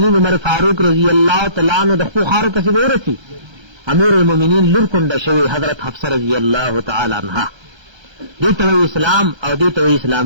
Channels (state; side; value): late; left; 1.3 ms